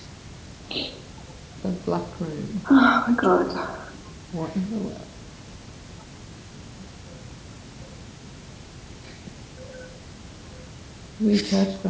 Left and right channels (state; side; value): identical; both; correlation 1.00